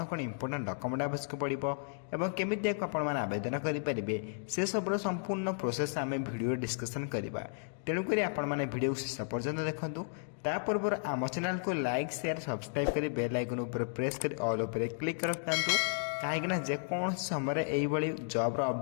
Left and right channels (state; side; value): silent; right; digital silence